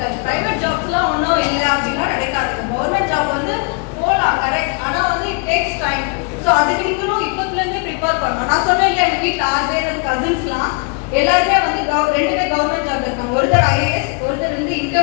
ப்ரைவேட் ஜாப்ஸ்லாம் ஒன்றும் இல்லை அப்படின்னா கிடைக்காது. கவர்மெண்ட் ஜாப் வந்து போகலாம் கரெக்ட், ஆனால் வந்து இட் டேக்ஸ் டைம். ஸோ அதுக்கு நீங்களும் இப்போத்துலேருந்தே ப்ரிப்பேர் பண்ணணும். நான் சொன்னேன் இல்லையா, எங்கள் வீட்டில் 6 பேர் கசின்ஸ்லாம் எல்லாருமே வந்து 2 பேர் கவர்மெண்ட் ஜாப் இருக்காங்க. ஒருத்தர் IAS, ஒருத்தர் வந்து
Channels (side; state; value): right; quieter; 34.7 dB